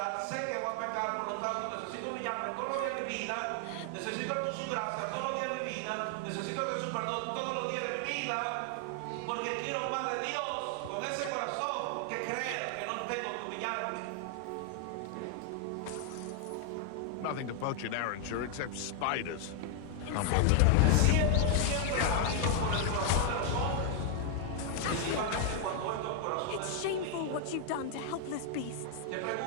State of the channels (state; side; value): different; both; correlation 0.00